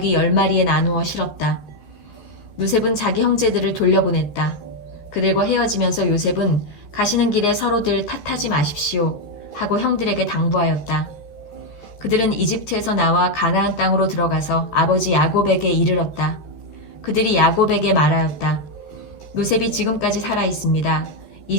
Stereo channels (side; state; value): right; late; 14 ms